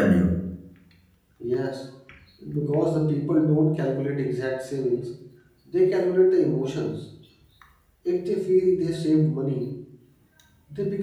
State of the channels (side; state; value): both; identical; correlation 1.00